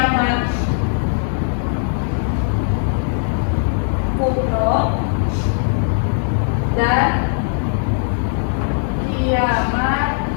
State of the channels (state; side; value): silent; right; 67 dB below the other